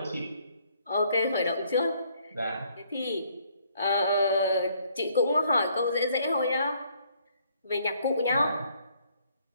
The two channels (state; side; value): inverted; both; correlation -0.66